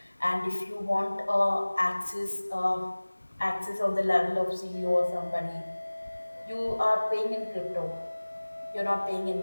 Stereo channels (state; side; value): inverted; both; correlation -1.00